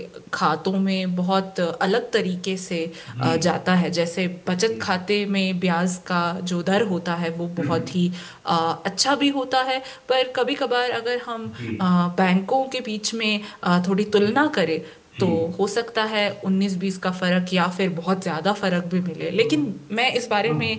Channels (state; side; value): identical; both; correlation 1.00